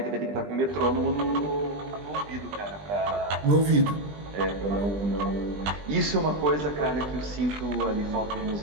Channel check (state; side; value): late; left; 20 ms